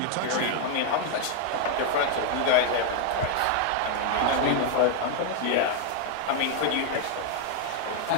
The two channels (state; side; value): different; both; correlation 0.00